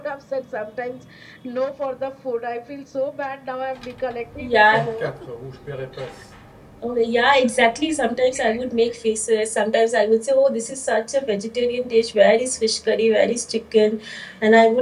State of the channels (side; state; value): both; identical; correlation 1.00